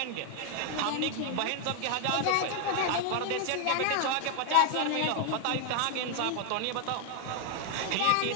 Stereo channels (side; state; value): both; different; correlation 0.00